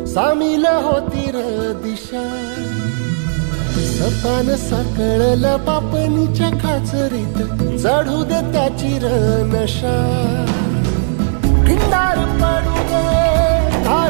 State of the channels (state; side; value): silent; left; 66 dB below the other